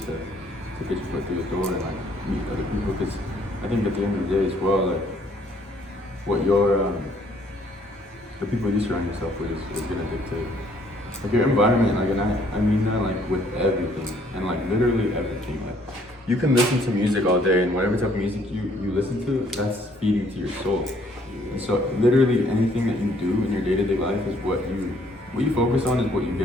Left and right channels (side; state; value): both; normal; correlation 0.63